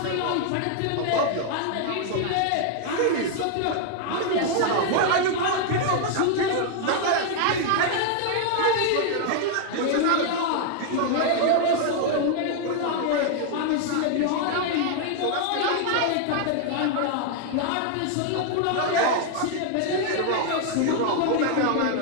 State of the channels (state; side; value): different; both; correlation 0.00